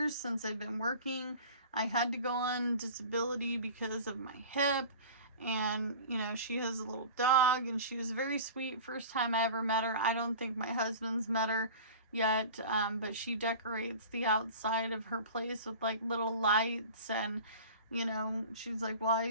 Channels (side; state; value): both; inverted; correlation -0.37